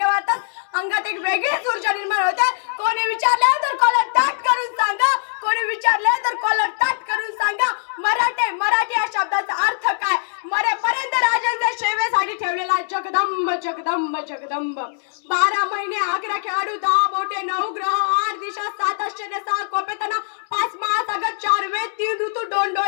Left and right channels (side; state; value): right; silent; 65 dB below the other